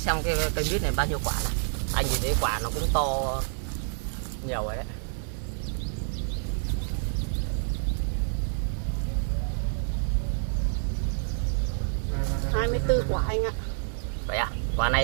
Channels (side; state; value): left; silent; digital silence